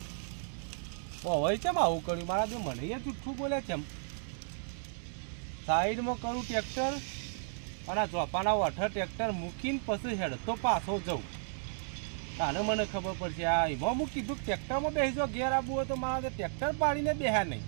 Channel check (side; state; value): left; silent; digital silence